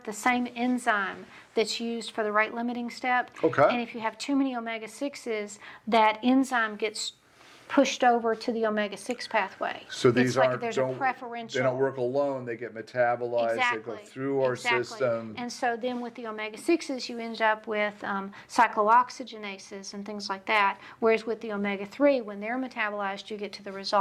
the same enzyme that's used for the rate limiting step. Okay. And if you have too many omega-6s, that enzyme gets pushed over to the omega-6 pathway. So these there's a preferential. They don't work alone. They get metabolized. They go through our system. And so then with the omega-6s, you end up with cyclooxygenases and things like that. Whereas with the omega-3, when they're metabolized, you get to the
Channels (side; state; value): both; identical; correlation 1.00